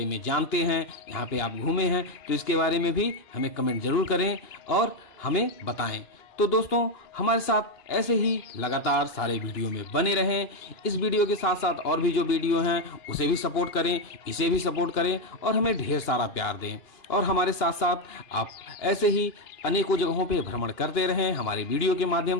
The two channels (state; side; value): late; right; 2.9 ms